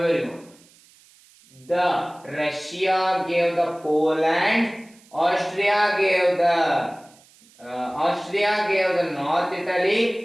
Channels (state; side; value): noise; right; hiss, 28 dB below the sound